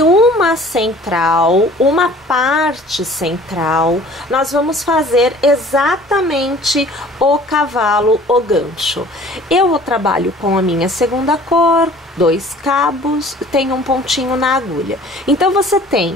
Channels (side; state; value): both; normal; correlation 0.50